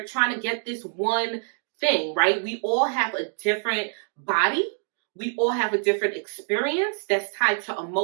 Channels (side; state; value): left; silent; 60 dB below the other